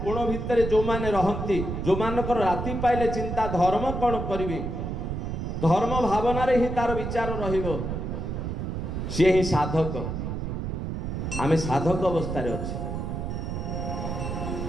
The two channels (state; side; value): noise; right; rumble, 4 dB below the sound